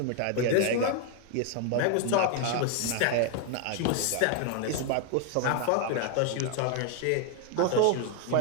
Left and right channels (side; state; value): both; different; correlation 0.00